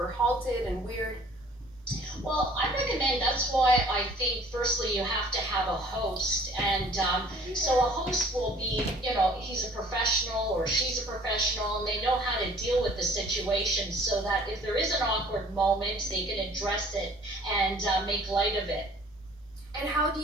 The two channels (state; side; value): normal; both; correlation 0.53